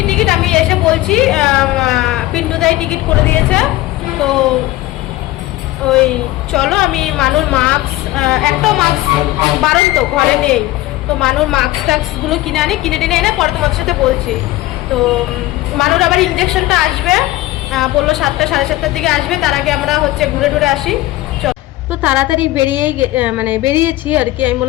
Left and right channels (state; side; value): quieter; right; 17.4 dB